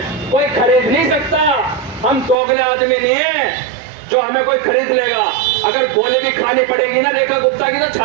कोई खरीद नहीं सकता। हम दोगले आदमी नहीं है जो हमें कोई खरीद लेगा। अगर गोली भी खानी पड़ेगी ना रेखा गुप्ता की, तो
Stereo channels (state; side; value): drops out; left; at 2.4 s